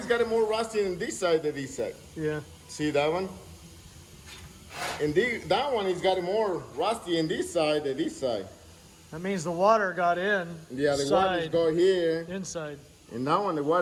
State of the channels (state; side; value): identical; both; correlation 1.00